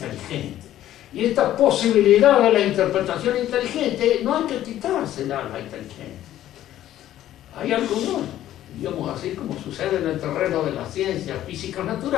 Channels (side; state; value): right; quieter; 12.8 dB